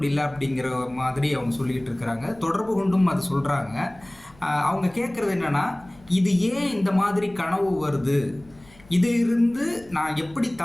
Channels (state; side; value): noise; left; rumble, 25 dB below the sound